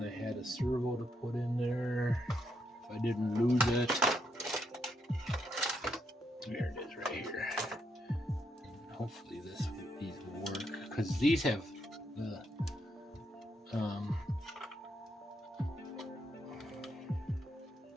I had a servo to put in there if I didn't lose it. There it is, right here. Hopefully these will work, because these have the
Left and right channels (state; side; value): normal; both; correlation 0.78